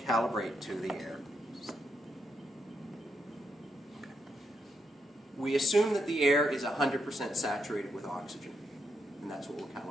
to the air. Okay. We assume that the air is 100% saturated with oxygen. And that's what we're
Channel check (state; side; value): normal; both; correlation 0.81